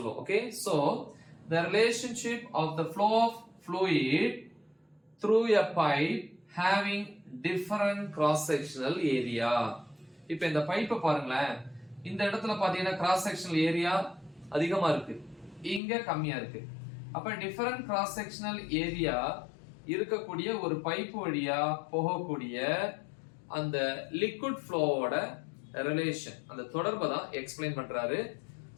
Okay, so the relationship of the flow of fluid through a pipe having different cross sectional area. இப்போ இந்த பைப்பை பாருங்களேன், இந்த இடத்துல பாத்தீங்கன்னா கிராஸ் செக்ஷனல் ஏரியா அதிகமா இருக்கு, இங்க கம்மியா இருக்கு. அப்ப டிஃபரண்ட் கிராஸ் செக்ஷனல் ஏரியா இருக்கக்கூடிய ஒரு பைப் வழியா போகக்கூடிய அந்த லிக்விட் ஃப்ளோவோட ரிலேஷன், அந்த தொடர்பை தான் எக்ஸ்பிளைன் பண்றாரு.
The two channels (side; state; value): right; drops out; at 15.8 s